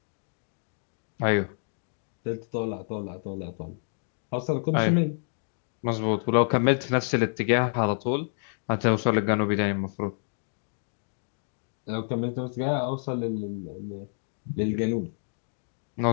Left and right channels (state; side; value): silent; right; digital silence